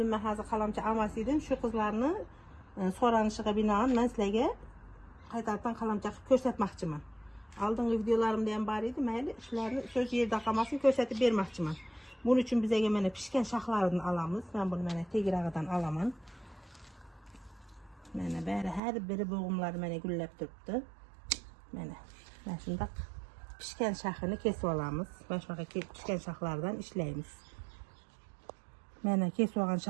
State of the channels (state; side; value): drops out; left; at 18.8 s